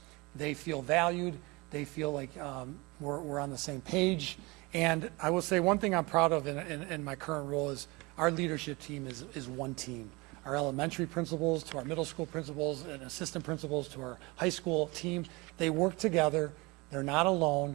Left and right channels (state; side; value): quieter; left; 25.0 dB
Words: they feel valued, they feel like we're on the same page. And I will say one thing I'm proud of in my current role is our leadership team is one team. Our elementary principals to our middle school principals and assistant principals to our high school team, they work together. they're not